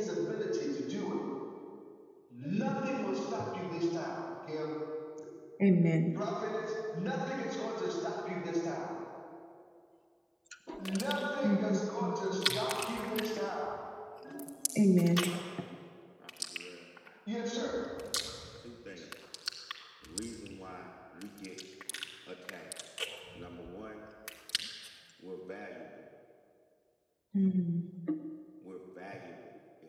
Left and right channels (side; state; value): both; identical; correlation 1.00